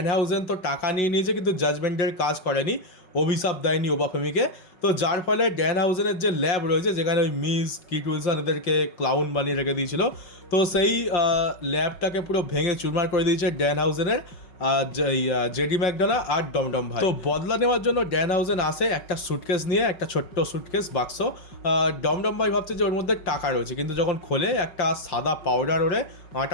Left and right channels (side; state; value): right; late; 5.4 ms